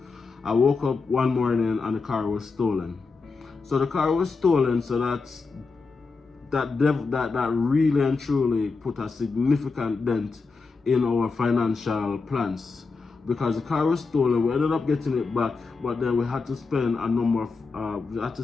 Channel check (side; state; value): right; quieter; 4.4 dB